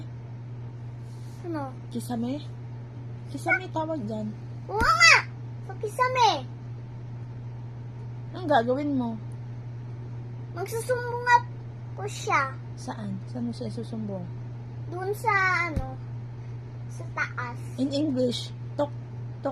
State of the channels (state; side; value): identical; both; correlation 1.00